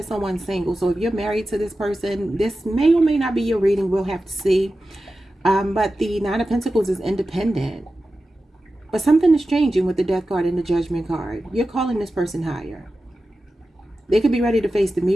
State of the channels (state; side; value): normal; both; correlation 0.93